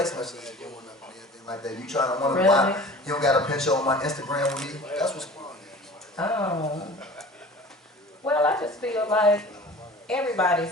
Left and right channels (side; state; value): both; normal; correlation 0.42